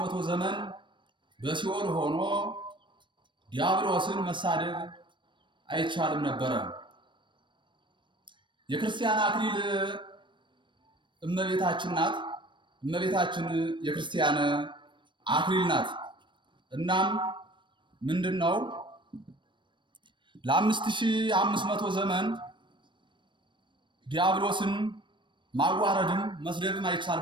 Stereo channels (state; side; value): late; left; 0.23 ms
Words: ዘመን በሲኦል ሆኖ ዲያብሎስን መሳደብ አይቻልም ነበረ። የክርስቲያን አክሊል እመቤታችን ናት። እመቤታችን የክርስቲያን አክሊል ናት። እናም ምንድነው ለ5500 ዘመን ዲያብሎስን ማዋረድም መስደብም